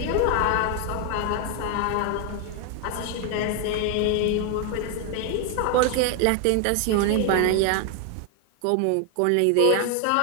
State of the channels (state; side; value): different; both; correlation 0.01